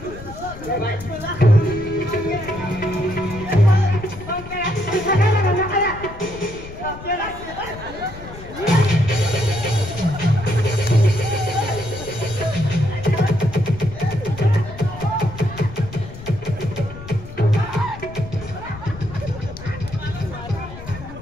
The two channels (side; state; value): left; noise; rumble, 14 dB below the sound